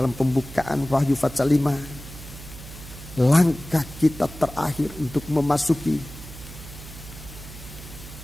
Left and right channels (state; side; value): noise; right; hum, 14 dB below the sound